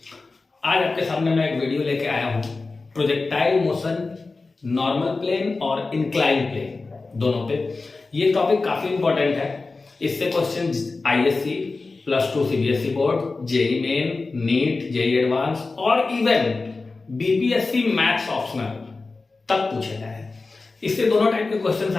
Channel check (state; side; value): quieter; right; 3.8 dB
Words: आज आपके सामने मैं एक वीडियो लेके आया हूँ प्रोजेक्टाइल मोशन नॉर्मल प्लेन और इंक्लाइन प्लेन दोनों पे। ये टॉपिक काफ़ी इंपॉर्टेंट है। इससे question ISC, +2 CBSE board, JEE main, NEET, JEE advance और इवन बीपीएससी मैथ्स ऑप्शनल तक पूछे गए हैं। इससे दोनों टाइप के क्वेश्चंस